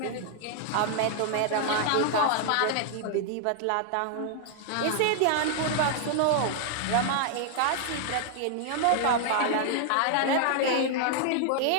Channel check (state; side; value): different; both; correlation 0.00